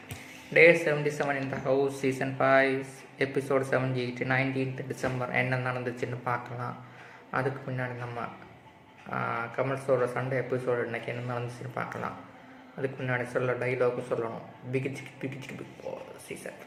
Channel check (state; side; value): identical; both; correlation 1.00